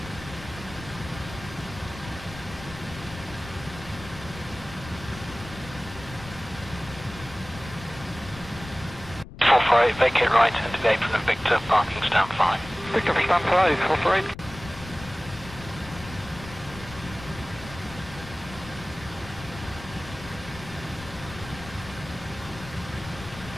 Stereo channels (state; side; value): noise; left; rumble, 15 dB below the sound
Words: Vacate right, into the apron of Victor, parking stand 5. Victor, stand 5, operate.